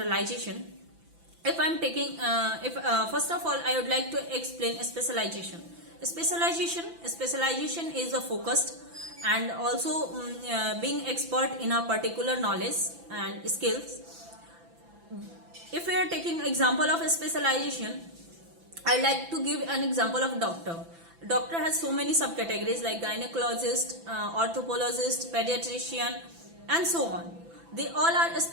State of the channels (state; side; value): late; left; 5.9 ms